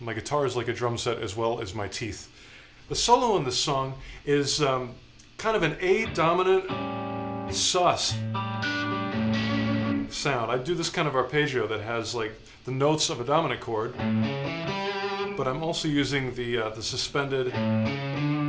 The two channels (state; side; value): identical; both; correlation 1.00